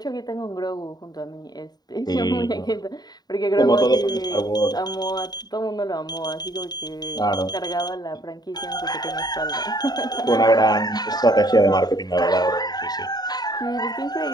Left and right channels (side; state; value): right; late; 0.20 ms